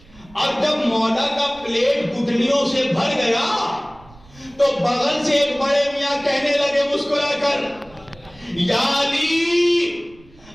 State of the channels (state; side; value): noise; right; rumble, 26 dB below the sound